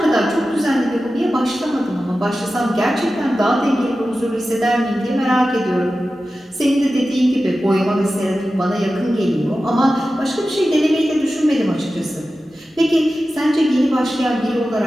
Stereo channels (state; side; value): normal; both; correlation 0.94